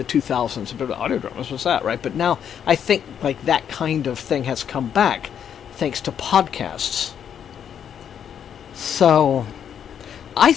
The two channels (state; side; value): quieter; right; 8.6 dB